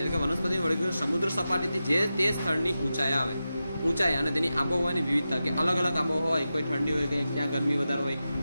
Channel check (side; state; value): both; inverted; correlation -0.92